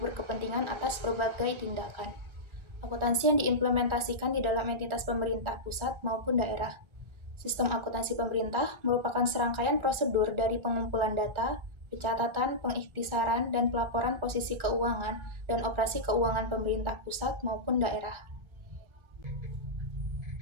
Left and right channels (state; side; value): late; left; 1.3 ms